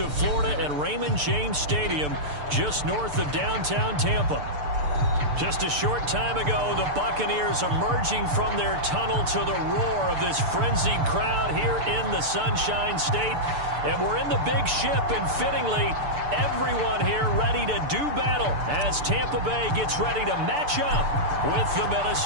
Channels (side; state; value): left; late; 6.8 ms